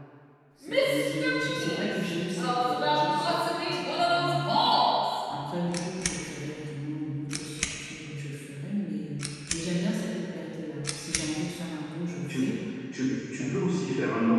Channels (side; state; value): both; identical; correlation 1.00